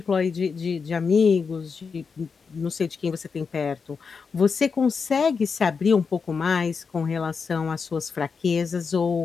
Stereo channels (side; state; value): right; quieter; 5.4 dB